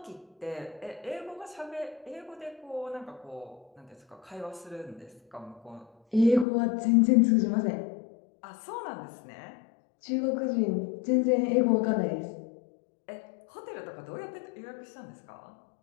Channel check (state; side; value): drops out; right; at 6.5 s